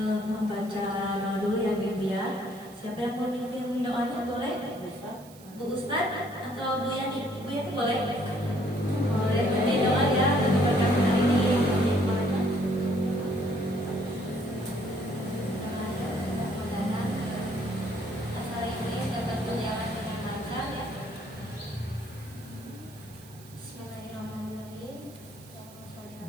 membaca doa dulu ya Bibi ya. Siapa yang mau mimpin doanya boleh? Bu Ustadz atau Bu Yani? Bu Yani boleh? Boleh. Jadi doa ya untuk berkat hari ini.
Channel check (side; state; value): right; noise; hiss, 22 dB below the sound